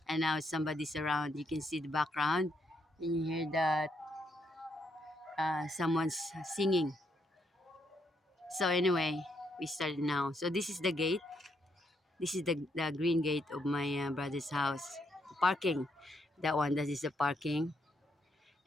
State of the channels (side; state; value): both; normal; correlation 0.76